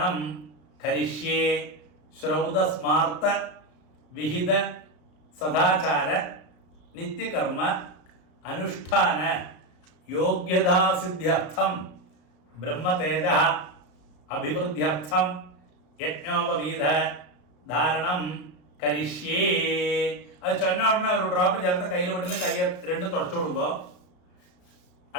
കരിഷ്യേ. ശ്രൗതസ്മാർത്ത വിഹിത സദാചാര നിത്യകർമ്മ അനുഷ്ഠാന യോഗ്യതാസിദ്ധ്യർത്ഥം ബ്രഹ്മതേജ അഭിവൃദ്ധ്യർത്ഥം യജ്ഞോപവീത ധാരണം കരിഷ്യേ. അത് ചൊന്ന ഉടനെ ഒരു ഡ്രോപ്പ് ചേർത്ത് കയ്യിൽ വിട്ടുന്ന കൈ 2 തുടച്ചു വിടുമ്പോ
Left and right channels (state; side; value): late; right; 33 ms